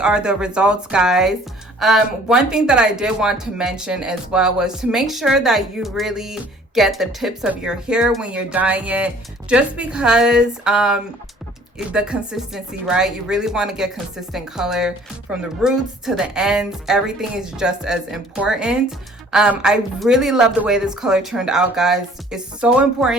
the results, guys. One thing that I did want to mention as well was to make sure that you really get the tips of your hair when you're dyeing it, just because the consistency, right? You really want to get consistent color from the roots to the ends. Everything is just as important. I really love the way this color turned out, guys. It's so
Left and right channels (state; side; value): normal; both; correlation 0.54